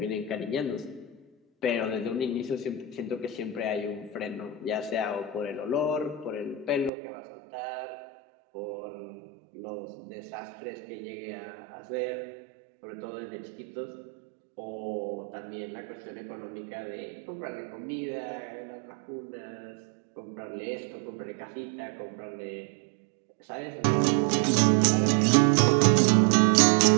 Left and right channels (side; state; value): left; drops out; at 6.9 s